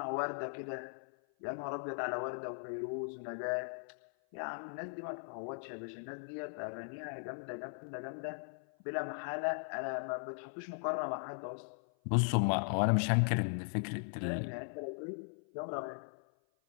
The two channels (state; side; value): silent; right; 52 dB below the other